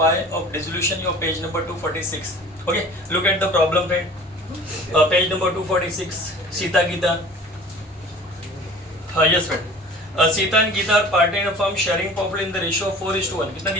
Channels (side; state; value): both; normal; correlation 0.44